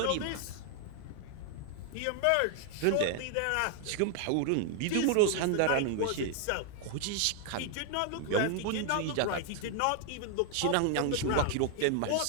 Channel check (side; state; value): both; different; correlation 0.00